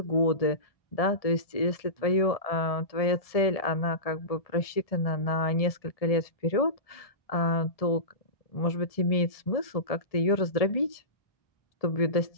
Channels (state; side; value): late; right; 1.7 ms